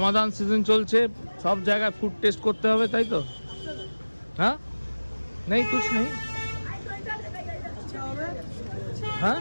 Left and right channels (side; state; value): both; inverted; correlation -1.00